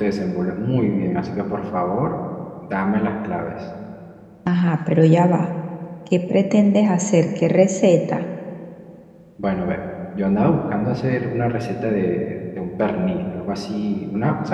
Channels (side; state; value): both; identical; correlation 1.00